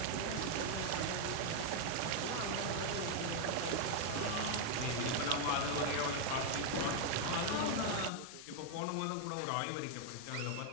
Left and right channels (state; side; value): different; both; correlation 0.00